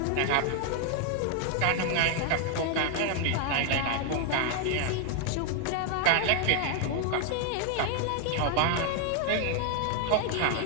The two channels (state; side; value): different; both; correlation 0.00